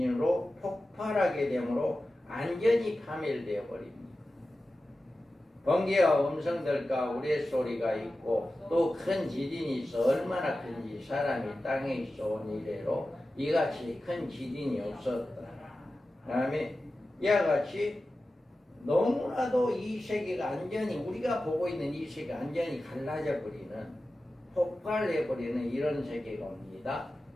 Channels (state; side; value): normal; both; correlation 0.94